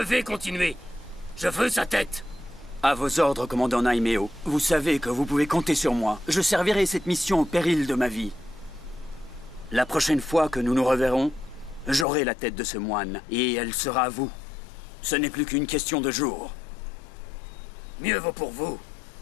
continuer. Je veux sa tête. À vos ordres, commandant Naimeo. Vous savez que vous pouvez compter sur moi. Je servirai cette mission au péril de ma vie. La prochaine fois que nous nous reverrons, j'aurai la tête de ce moine, et elle sera à vous. Ce n'est plus qu'une question de jours. Mieux vaut pour vous.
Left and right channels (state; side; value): drops out; right; at 12.1 s